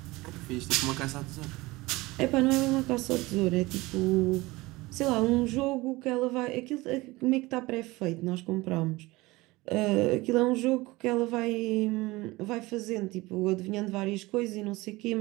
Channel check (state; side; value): quieter; left; 21.0 dB